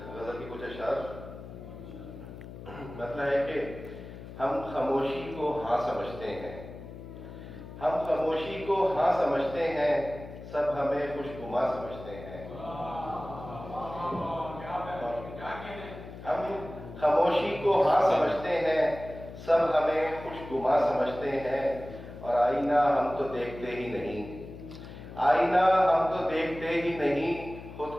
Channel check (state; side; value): noise; left; hum, 13 dB below the sound